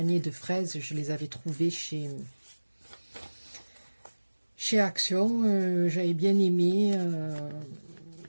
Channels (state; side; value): inverted; both; correlation -1.00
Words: de fraises, je les avais trouvées chez Action. J'avais bien aimé...